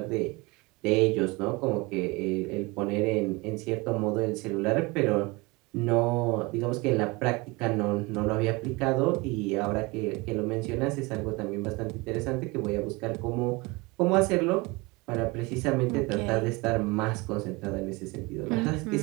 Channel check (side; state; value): left; quieter; 24.9 dB